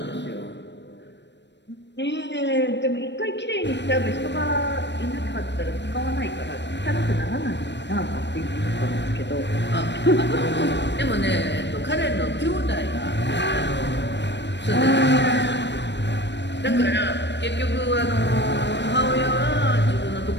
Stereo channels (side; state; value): right; late; 0.51 ms